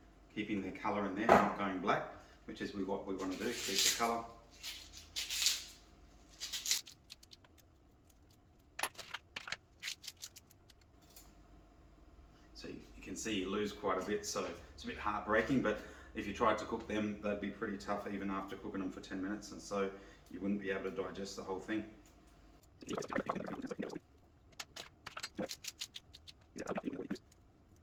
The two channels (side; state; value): both; identical; correlation 1.00